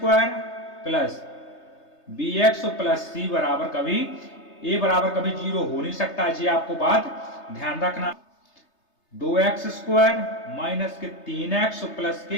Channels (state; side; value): late; right; 3.3 ms